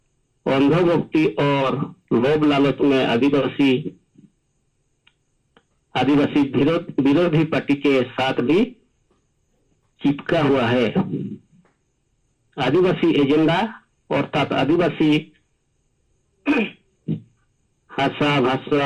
अंधभक्ति और लोभ लालच में आदिवासी विरोधी पार्टी के साथ भी चिपका हुआ है। आदिवासी एजेंडा अर्थात आदिवासी भाषा,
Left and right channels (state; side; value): identical; both; correlation 1.00